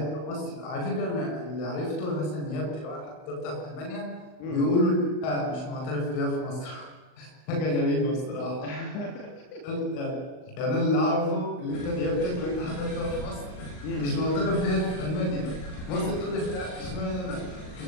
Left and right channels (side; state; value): right; late; 39 ms